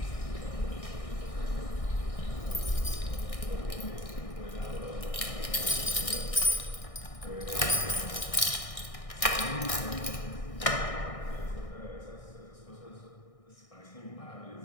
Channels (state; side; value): late; right; 1.6 ms